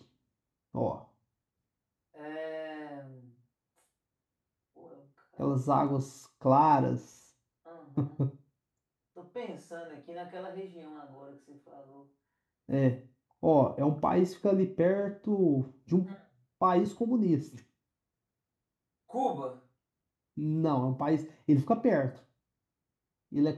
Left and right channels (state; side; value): identical; both; correlation 1.00